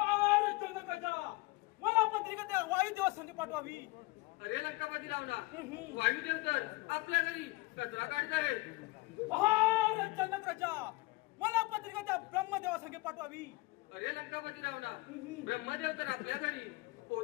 जनक राजा मला पत्रिका त्या वायुदेवा संग पाठवावी. अरे लंकापती रावणा वायुदेव तर आपल्या घरी कचरा काढत आहे. अरे जनक राजा मला पत्रिका त्या ब्रह्मदेवा संगे पाठवावी. अरे लंकापती रावणा ब्रह्मदेव तर आपल्या घरी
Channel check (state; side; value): quieter; right; 22.6 dB